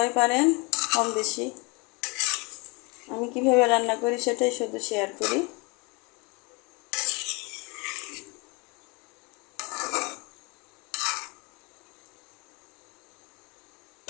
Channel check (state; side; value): quieter; right; 29.1 dB